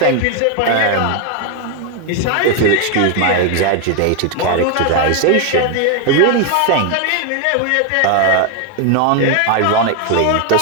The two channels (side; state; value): both; different; correlation 0.01